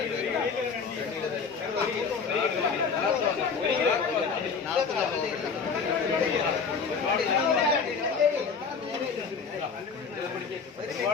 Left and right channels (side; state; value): right; quieter; 5.5 dB